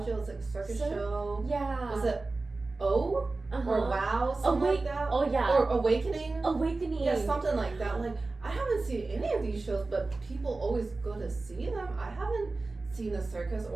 was like a circus show. Yeah. Was it or Wow, something like that. Oh yeah. Or Awakening. Yeah, something like that. Like I haven't seen any of these shows, but people always go to see them. I haven't seen a circus,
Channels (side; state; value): left; quieter; 3.5 dB